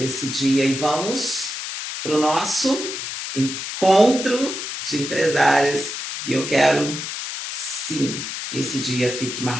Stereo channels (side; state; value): left; noise; hiss, 6 dB below the sound